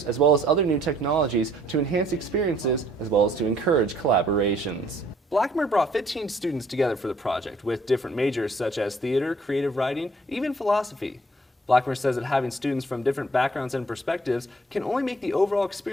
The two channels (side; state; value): both; normal; correlation 0.62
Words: as well as other new technologies to enhance experiences as well as to encourage collaborations. Brammer brought 15 students together for the project with different majors such as theater, creative writing, even philosophy. Brammer says that having students from different backgrounds and perspectives can only make the overall